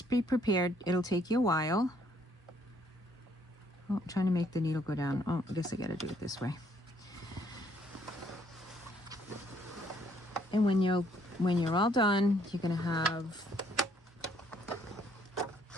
be prepared. It'll take you a while. Oh, I'm trying to make the needle go down. Oh, I guess I gotta do it this way. And when you're all done, you're gonna have,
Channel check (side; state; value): both; normal; correlation 0.67